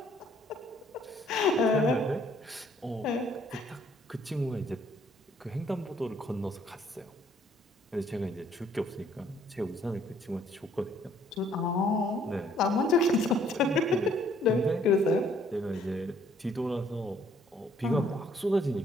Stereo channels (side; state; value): both; normal; correlation 0.63